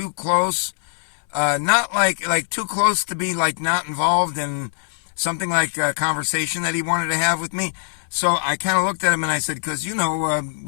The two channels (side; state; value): right; silent; digital silence